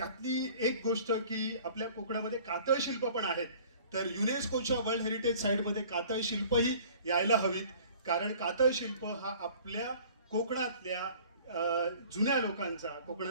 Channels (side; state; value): both; inverted; correlation -0.49